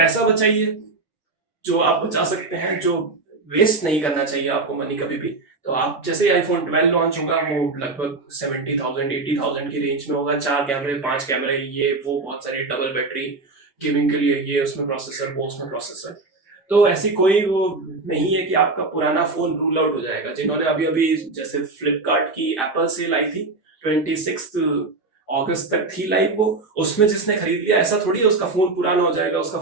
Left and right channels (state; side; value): quieter; left; 3.5 dB